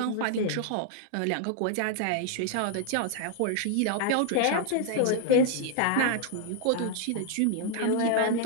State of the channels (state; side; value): different; both; correlation 0.00